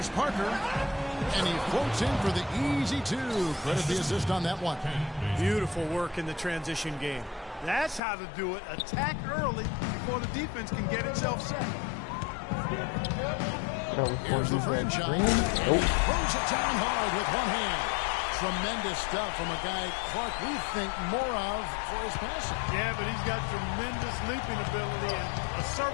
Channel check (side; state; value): right; drops out; at 8.0 s